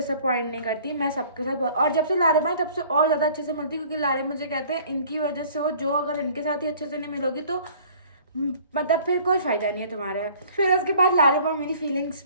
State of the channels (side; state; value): both; inverted; correlation -0.52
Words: नहीं करती। मैं सबके साथ और जब से लारिब आए तब से और ज़्यादा अच्छे से मिलती, क्योंकि लारिब मुझे कहते हैं इनकी वजह से हो, जो अगर इनके साथ ही अच्छे से नहीं मिलोगी तो मतलब फिर कोई फ़ायदा नहीं है तुम्हारा। फिर उसके बाद लारिब और मेरी फीलिंग्स